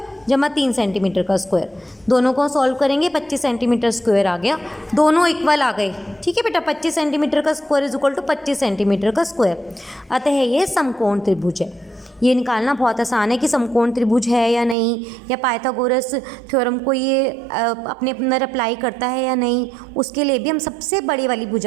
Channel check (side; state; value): left; drops out; at 14.8 s